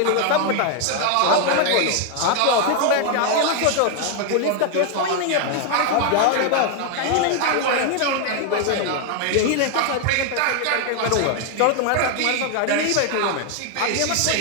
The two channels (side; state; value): both; different; correlation 0.00